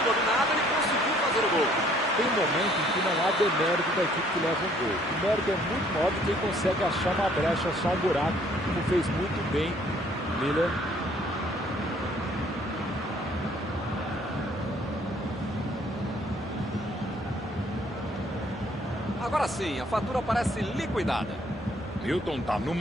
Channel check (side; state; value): both; normal; correlation 0.61